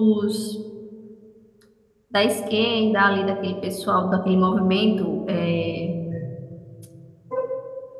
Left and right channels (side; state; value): both; identical; correlation 1.00